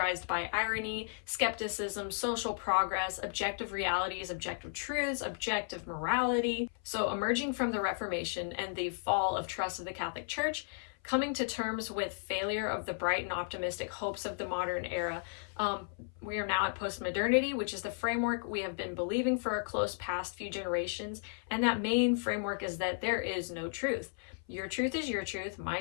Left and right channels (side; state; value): right; silent; 55 dB below the other